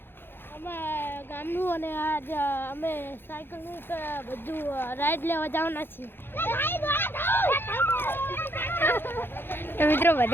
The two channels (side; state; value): right; late; 0.10 ms